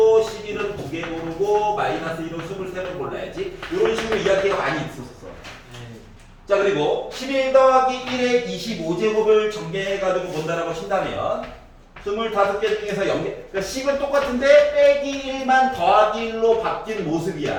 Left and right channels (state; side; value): identical; both; correlation 1.00